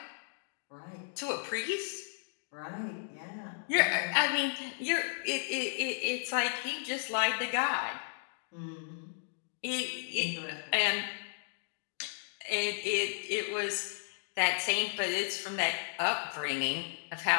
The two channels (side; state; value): right; silent; digital silence